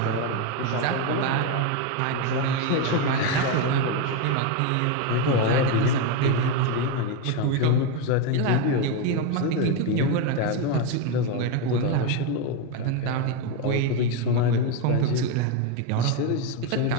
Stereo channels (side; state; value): both; different; correlation 0.03